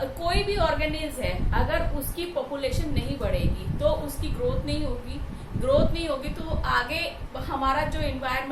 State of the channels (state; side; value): identical; both; correlation 1.00